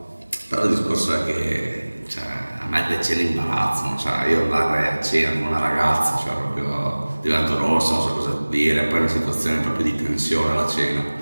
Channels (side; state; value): both; inverted; correlation -1.00